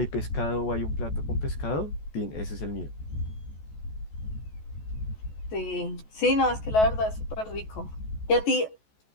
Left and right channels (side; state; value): right; late; 14 ms